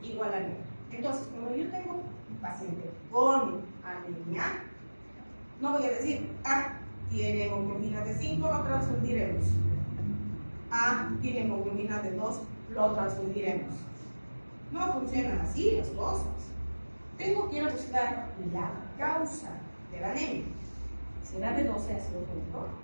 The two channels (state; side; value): inverted; both; correlation -1.00